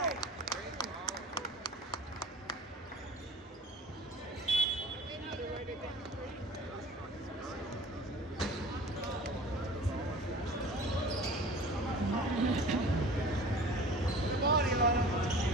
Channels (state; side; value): normal; both; correlation 0.42